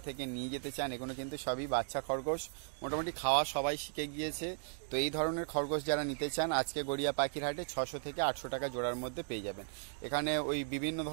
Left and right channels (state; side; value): silent; left; digital silence